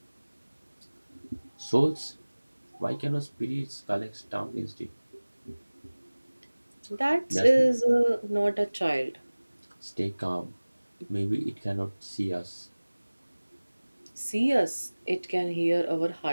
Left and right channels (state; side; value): inverted; both; correlation -1.00